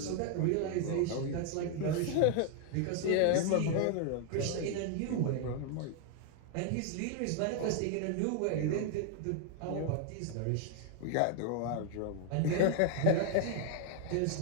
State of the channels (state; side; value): different; both; correlation 0.00